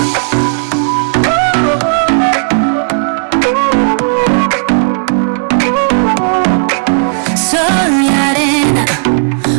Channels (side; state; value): left; silent; digital silence